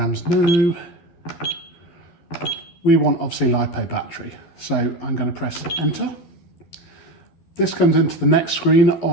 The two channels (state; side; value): late; right; 12 ms